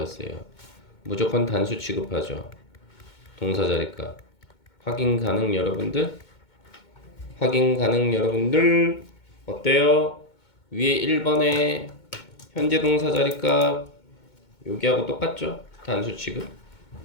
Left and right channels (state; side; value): late; right; 2.2 ms